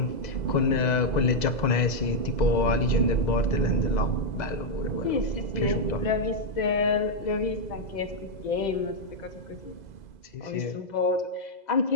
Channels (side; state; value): right; late; 2.0 ms